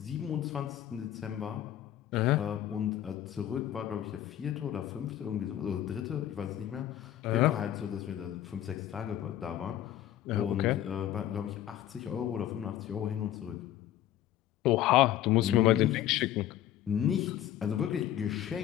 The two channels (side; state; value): right; quieter; 12.0 dB